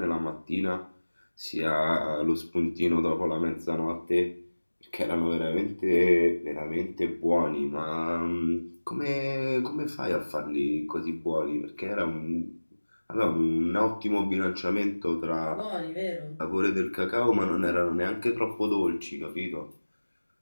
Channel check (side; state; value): both; inverted; correlation -1.00